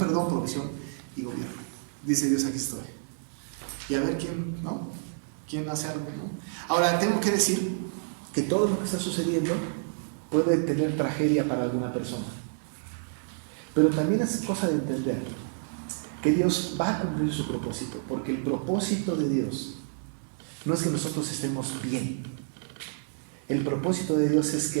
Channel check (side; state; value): left; silent; digital silence